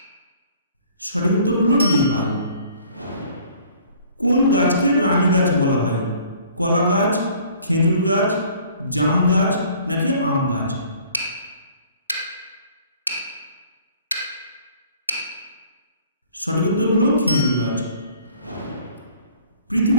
সঠিক উত্তর হলো নেপাল। কোন গাছকে রানী গাছ বলা হয়? কলা গাছ, খেজুর গাছ, জাম গাছ নাকি আম গাছ? সঠিক উত্তর হলো খেজুর গাছ।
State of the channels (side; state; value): both; inverted; correlation -0.54